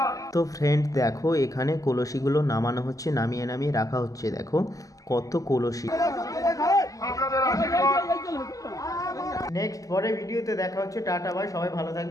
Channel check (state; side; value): late; right; 0.17 ms